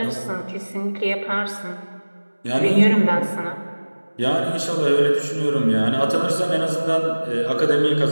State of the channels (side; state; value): both; inverted; correlation -1.00